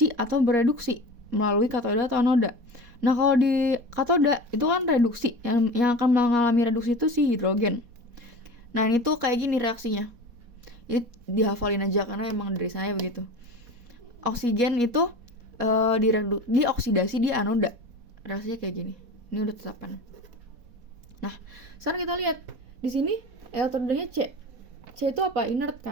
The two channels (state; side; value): late; left; 4.2 ms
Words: atau bereduksi melalui katoda atau anoda. Nah, kalau di katoda itu kan reduksi, yang akan mengalami reduksi itu si hidrogen. Nah, ini tuh kayak gini reaksinya. Ini dihafalin aja karena emang dari saya begitu. Oksigen itu dioksidasi di anoda. Reaksinya kayak gini. Ini udah tetapan. Nah, sekarang kita lihat di sini elektrodanya C. C itu apa? Inert